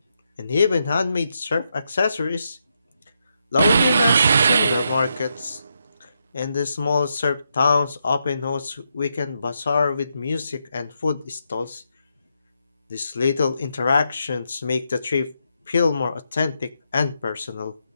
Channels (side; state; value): both; inverted; correlation -0.82